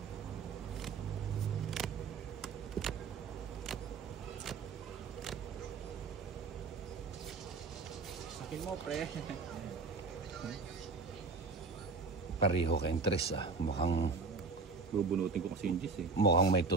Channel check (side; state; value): left; quieter; 4.2 dB